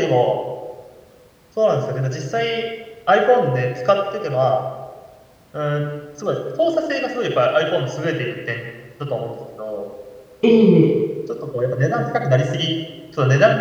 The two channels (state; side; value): identical; both; correlation 1.00